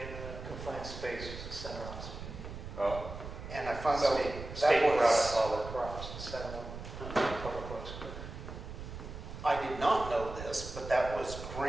confined spaces in Center Hospital. Oh. And I found out State that brought us was, all the crops and set them up. Public Works. I did not know this, but that was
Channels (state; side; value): noise; right; rumble, 10 dB below the sound